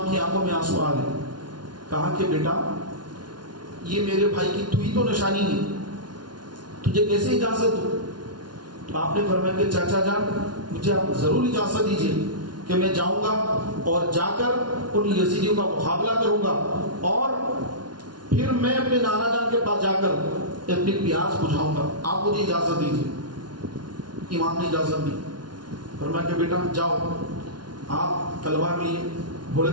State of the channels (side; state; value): left; late; 0.70 ms